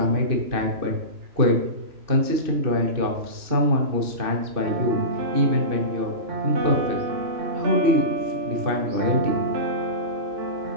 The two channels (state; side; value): late; left; 2.6 ms